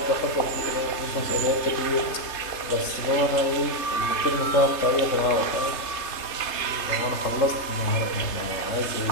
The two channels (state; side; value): late; right; 3.3 ms